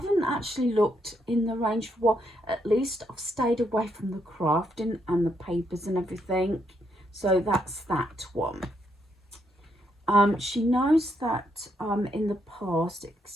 actually looked in the range for what, at least I've stayed away from the crafting and the papers and everything. So that's that one. She knows that in the past,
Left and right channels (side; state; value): both; normal; correlation 0.76